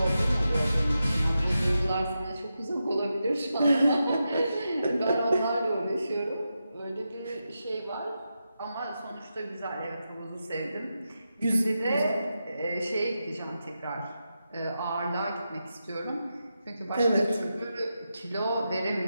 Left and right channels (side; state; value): both; inverted; correlation -0.88